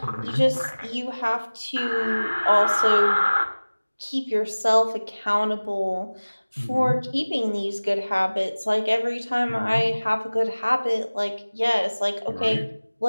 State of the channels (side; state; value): both; inverted; correlation -1.00